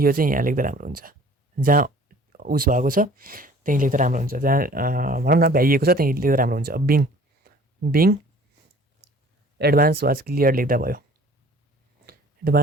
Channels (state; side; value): normal; both; correlation 0.51